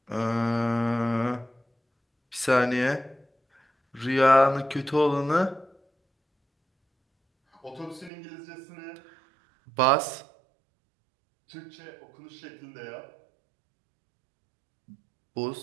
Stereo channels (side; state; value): left; drops out; at 8.1 s